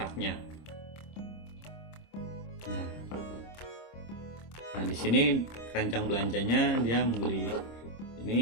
Nah, di sini keranjang belanjanya dia membeli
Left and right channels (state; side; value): late; right; 26 ms